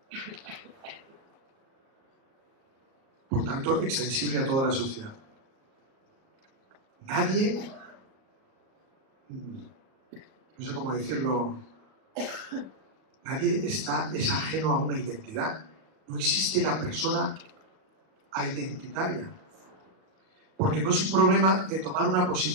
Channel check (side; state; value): left; late; 38 ms